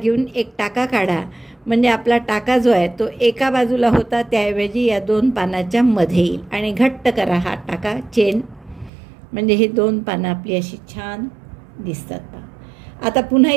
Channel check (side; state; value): left; drops out; at 8.9 s